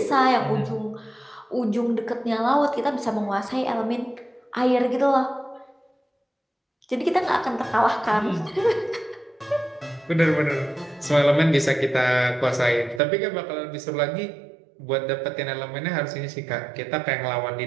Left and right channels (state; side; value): drops out; left; at 13.0 s